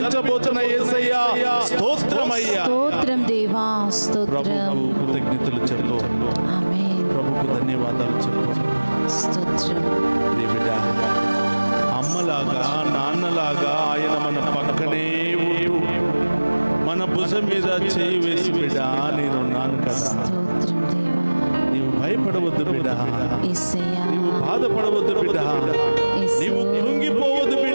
యేసయ్యా స్తోత్రమయ్యా. స్తోత్రం దేవా. స్తోత్రం. ప్రభువు కృతజ్ఞతలు చెప్పు. ఆమేన్. ప్రభుకు ధన్యవాదాలు చెప్పు. స్తోత్రం. బిడ్డ, అమ్మలాగా నాన్నలాగా ఆయన మన పక్కనే ఉంటూ మన భుజం మీద చేయి వేసి బిడ్డ నేనున్నాను కదా, స్తోత్రం దేవా. నీవు భయపడవద్దు బిడ్డ, యేసయ్యా. నీవు బాధపడవద్దు బిడ్డ, యేసు. నీవు కృంగిపోవద్దు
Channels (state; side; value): inverted; both; correlation -1.00